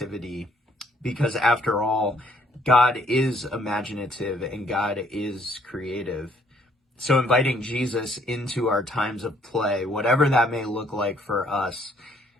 Because after all, God is imaginative and God is creative. So inviting Jesus into our times of play, whatever that may look like for us,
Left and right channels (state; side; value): normal; both; correlation 0.66